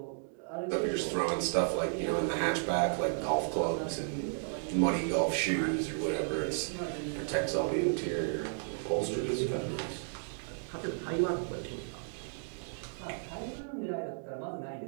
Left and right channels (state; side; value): silent; left; digital silence